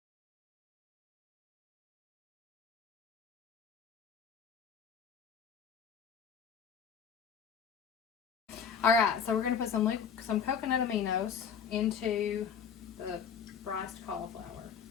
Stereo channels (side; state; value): right; quieter; 7.0 dB